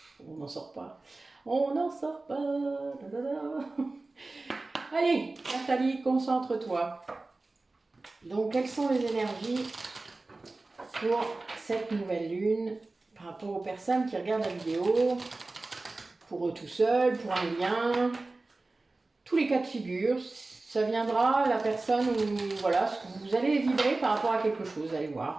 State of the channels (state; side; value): quieter; left; 3.3 dB